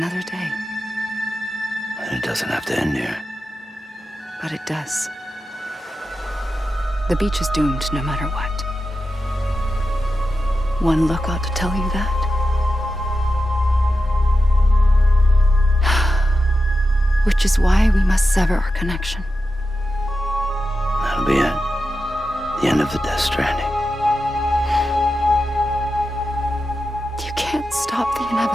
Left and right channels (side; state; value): both; normal; correlation 0.90